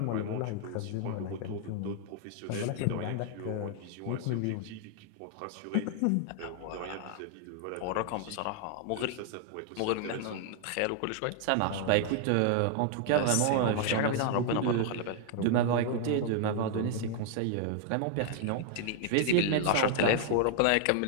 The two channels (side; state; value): both; different; correlation 0.00